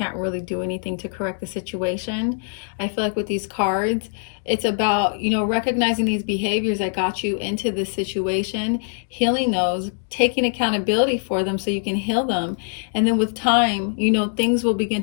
really do anything to correct the situation. I feel like with these cards, it's about, recognizing these behaviors that got you into this situation, healing those, taking accountability for them so you can heal them. And then with time, things will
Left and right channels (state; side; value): silent; right; digital silence